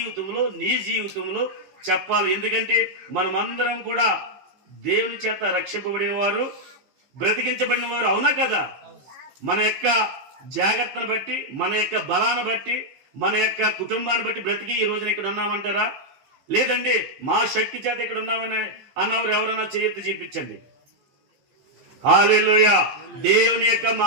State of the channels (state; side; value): late; left; 15 ms